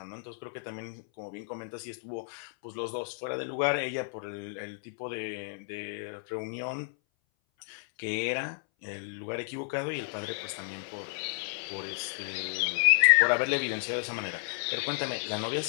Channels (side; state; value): right; silent; 57 dB below the other